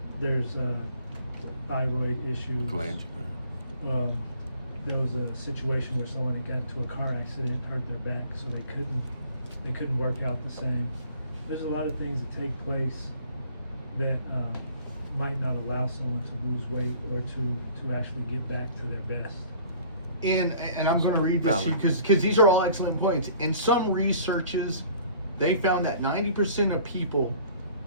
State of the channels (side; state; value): both; inverted; correlation -0.51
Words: There's thyroid issues. Glange. There was a situation where someone had got into a car accident, hurt their back, so they couldn't work out the same. There's a lot of things that take place that might not allow someone to lose weight or to actually get back to their best. And I'm going to read this Valid. because these are all excellent points. In some researches, they found that 90% of people